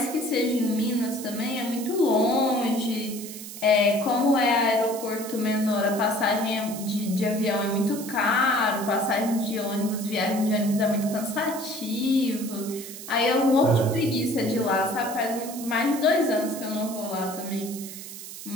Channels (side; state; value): right; noise; hiss, 12 dB below the sound